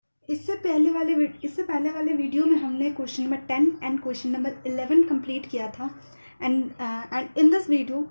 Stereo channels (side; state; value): both; inverted; correlation -1.00